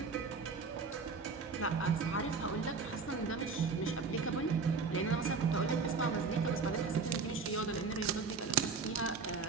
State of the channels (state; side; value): quieter; left; 4.7 dB